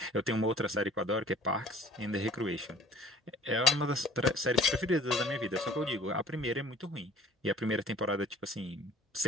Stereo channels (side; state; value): both; normal; correlation 0.49